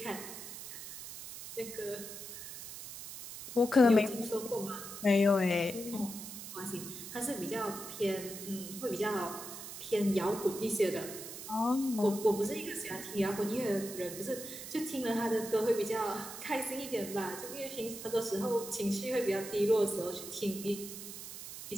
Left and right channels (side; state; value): right; noise; hiss, 10 dB below the sound